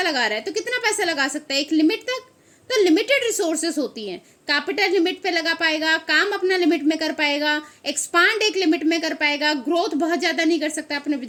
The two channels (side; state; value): both; identical; correlation 1.00